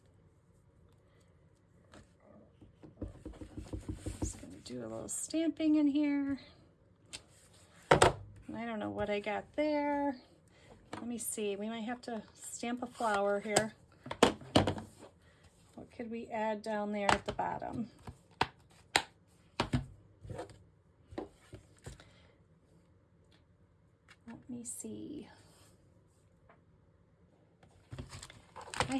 just going to do a little stamping in here. I don't know what I got there. Let me see. We might have to stamp a flower here. What could we add down there at the bottom? Let me see. I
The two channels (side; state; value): both; identical; correlation 1.00